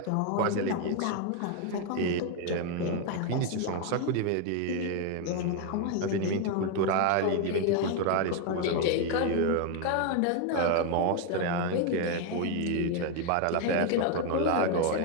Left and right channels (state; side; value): different; both; correlation 0.01